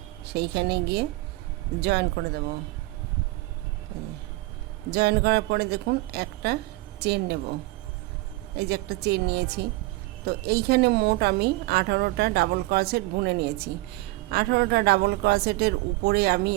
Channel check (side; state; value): left; quieter; 20.7 dB